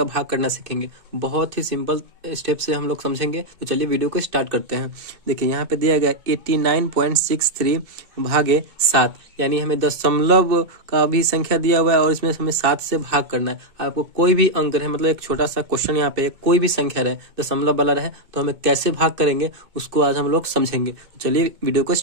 भाग करना सीखेंगे। बहुत ही सिंपल स्टेप से हम लोग समझेंगे। तो चलिए वीडियो को स्टार्ट करते हैं। देखिए यहाँ पे दिया गया 89.63 भागे 7, यानी हमें दशमलव का भी संख्या दिया हुआ है और इसमें हमें 7 से भाग करना है। आपको कोई भी अंक रहे, मतलब एक छोटा सा क्वेश्चन यहाँ पे कोई भी संख्या रहे, दशमलव वाला रहे, तो हमें कैसे भाग करेंगे उसको आज हम लोग समझेंगे। तो चलिए वीडियो को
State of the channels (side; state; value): left; late; 2.2 ms